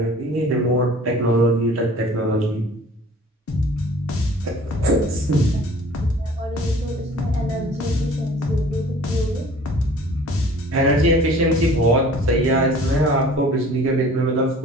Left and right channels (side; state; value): both; normal; correlation 0.48